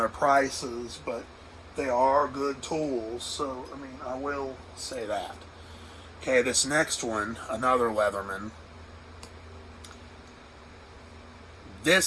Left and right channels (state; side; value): identical; both; correlation 1.00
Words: prices, but they are good tools. So I mean, I will say that. Okay, this next one, another Leatherman.